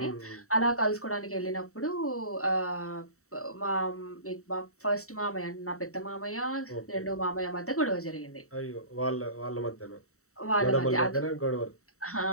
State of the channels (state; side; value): late; right; 0.64 ms